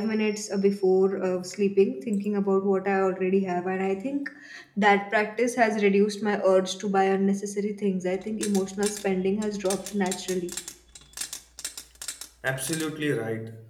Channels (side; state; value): both; identical; correlation 1.00